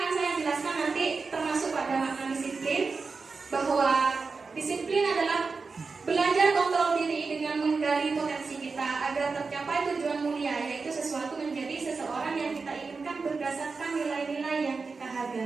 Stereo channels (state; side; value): quieter; left; 4.5 dB